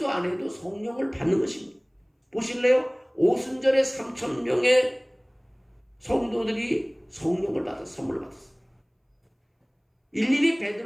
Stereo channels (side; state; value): both; identical; correlation 1.00